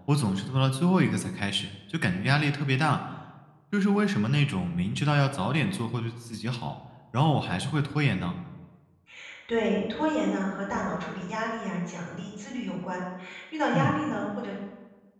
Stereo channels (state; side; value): identical; both; correlation 1.00